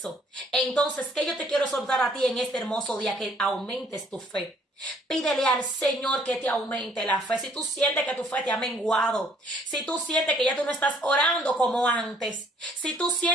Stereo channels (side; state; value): both; normal; correlation 0.62